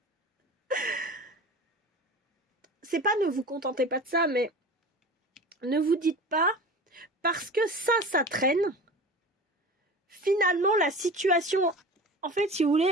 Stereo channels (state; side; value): normal; both; correlation 0.35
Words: C'est pas ne vous contentez pas de ça, mais ne vous dites pas, parce que ça traîne... Finalement, la situation... En fait, si vous voulez,